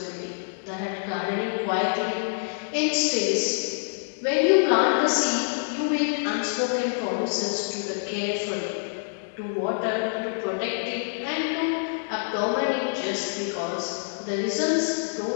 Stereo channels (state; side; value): silent; right; 61 dB below the other